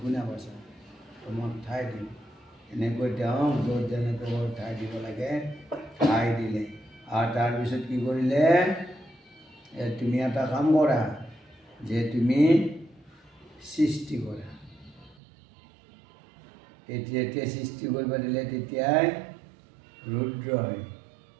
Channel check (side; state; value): left; drops out; at 15.2 s